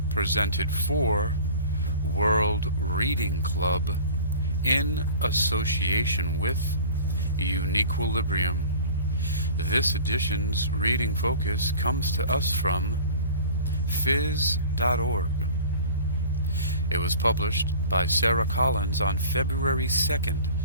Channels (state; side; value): inverted; both; correlation -0.42